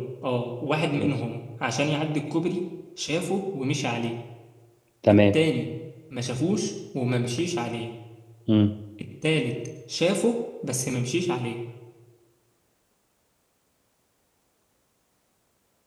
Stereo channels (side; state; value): both; identical; correlation 1.00